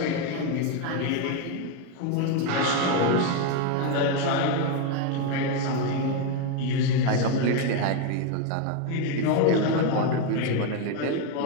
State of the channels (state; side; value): different; both; correlation 0.02